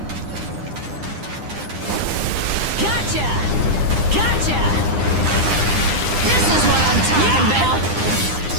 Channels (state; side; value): late; left; 9.9 ms